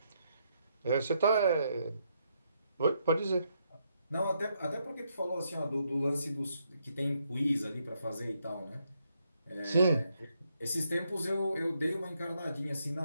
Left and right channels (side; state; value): both; inverted; correlation -0.77